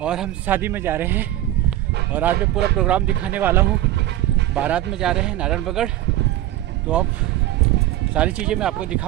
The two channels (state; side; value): quieter; left; 14.5 dB